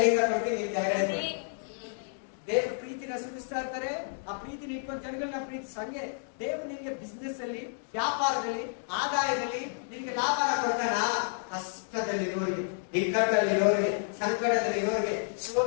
ಕೊಡ್ತೀನಿ, ನೀವು ಕೆಳಗಡೆ. ದೇವ್ರ ಪ್ರೀತಿನ ಸುರಿಸ್ತಾ ಇರ್ತಾರೆ. ಆ ಪ್ರೀತಿನ ಇಟ್ಕೊಂಡು ಜನಗಳನ್ನ ಪ್ರೀತಿಸ. ಹಂಗೆ ದೇವ್ರು ನಿನಗೆ ಬಿಸ್ನೆಸ್ ಅಲ್ಲಿ, ವ್ಯಾಪಾರದಲ್ಲಿ, ಆದಾಯದಲ್ಲಿ ನಿನಗೆ ಲಾಭನ ಕೊಡ್ತಾನ. ಕಷ್ಟದಲ್ಲಿರೋರಿಗೆ, ಇಕ್ಕಟ್ಟಲ್ಲಿರೋರಿಗೆ, ಸಂಕಟದಲ್ಲಿರೋರಿಗೆ,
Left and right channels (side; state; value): right; silent; digital silence